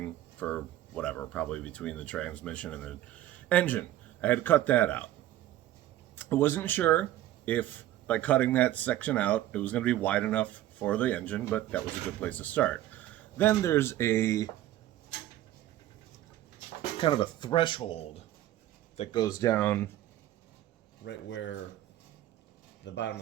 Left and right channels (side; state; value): left; quieter; 13.8 dB